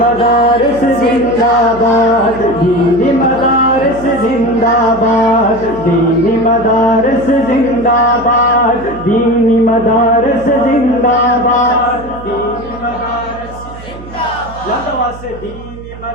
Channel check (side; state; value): right; noise; hum, 16 dB below the sound